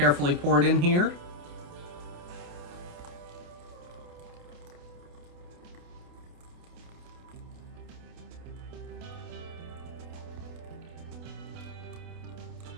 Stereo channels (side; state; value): left; late; 28 ms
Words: pour it in here.